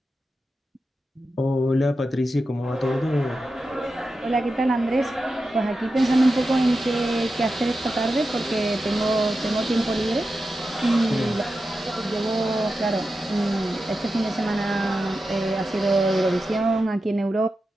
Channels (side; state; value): both; normal; correlation 0.91